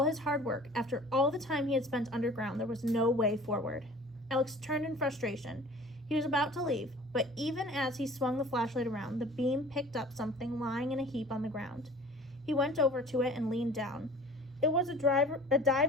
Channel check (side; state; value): both; normal; correlation 0.45